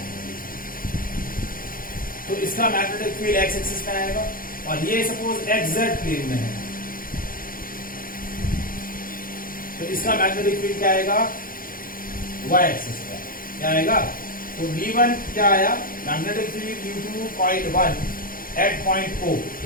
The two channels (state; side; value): late; right; 0.41 ms